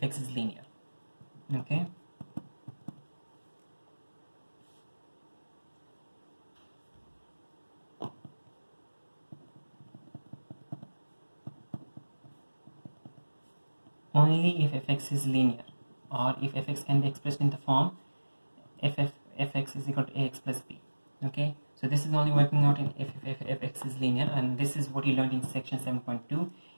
fx is linear. Okay, only if fx is linear, or if fx can be expressed in the form fx is equal to ax plus b. Okay, so this is only working out in if fx is linear, and this is what you learned in section 7.2.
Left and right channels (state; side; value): inverted; both; correlation -1.00